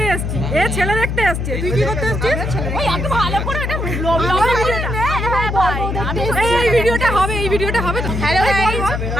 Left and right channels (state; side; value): noise; left; hum, 2 dB below the sound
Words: এসেছি, এ ছেলে দেখতে এসেছি। তুই কি করতে এসেছিস? ওই এত ভালো করে এটা ব্লগ এই ভিডিওটা হবে, এই ভিডিওটা হবে। হ্যালো গাইস,